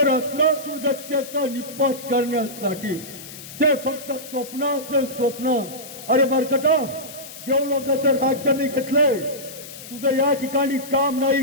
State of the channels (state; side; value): noise; left; hiss, 14 dB below the sound